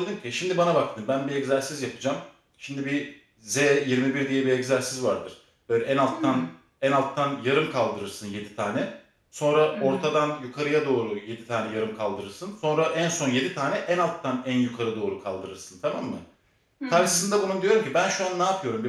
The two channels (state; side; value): identical; both; correlation 1.00